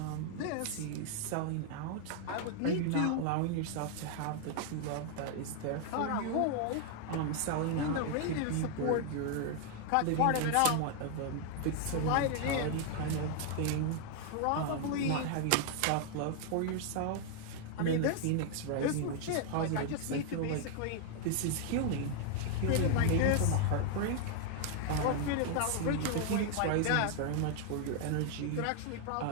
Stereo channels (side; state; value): both; different; correlation 0.00